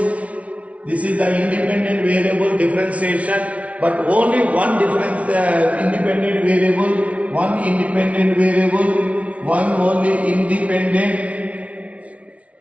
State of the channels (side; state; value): left; late; 0.065 ms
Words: this is the independent variable differentiation, but only one difference independent variable, one independent variable, one only independent,